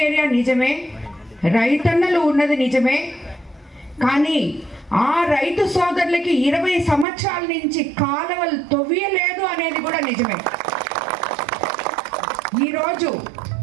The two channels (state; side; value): drops out; left; at 7.1 s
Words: ఏరియా నిజమే, రైతన్నలు ఉన్నది నిజమే, కానీ ఆ రైతు సోదరులకి 20 సంవత్సరాల నుంచి కాలువలు తవ్వియలేదు అనేది కూడా నిజమే. ఈరోజు